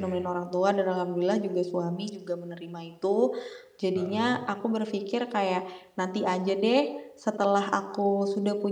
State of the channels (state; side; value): identical; both; correlation 1.00